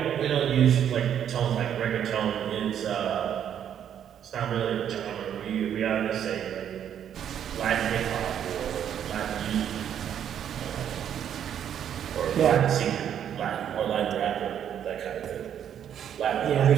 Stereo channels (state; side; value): quieter; left; 9.4 dB